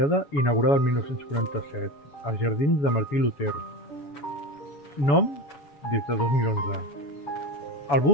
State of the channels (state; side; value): late; right; 7.1 ms